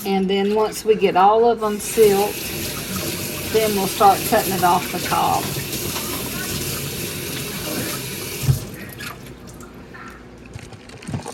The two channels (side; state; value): both; identical; correlation 1.00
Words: And then once we get all of them silked, then we'll start cutting it off the cob.